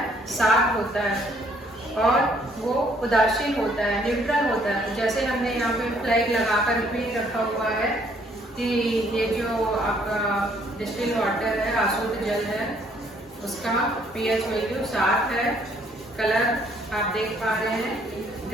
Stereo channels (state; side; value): normal; both; correlation 0.65